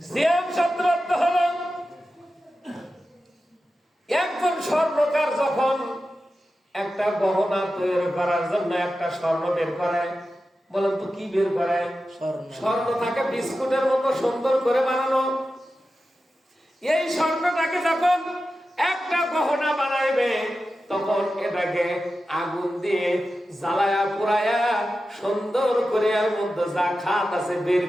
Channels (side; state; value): both; normal; correlation 0.92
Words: সিয়াম শব্দের অর্থ হলো একজন স্বর্ণকার যখন একটা গহনা তৈরি করার জন্য একটা স্বর্ণ বের করে, বলেন তো কি বের করে? স্বর্ণ থাকে বিস্কুটের মতো সুন্দর করে বানানো। এই স্বর্ণটাকে যখন একটা গহনা বানাইবে তখন এটাকে আগুন দিয়ে জ্বালায়া পুরায়া সুন্দর করে এর মধ্যে যা খাত আছে বের